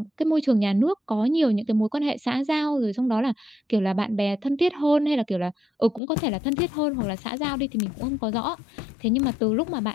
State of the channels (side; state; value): right; drops out; at 6.0 s